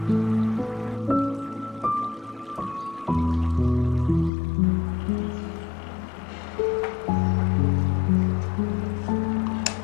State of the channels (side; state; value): right; drops out; at 4.3 s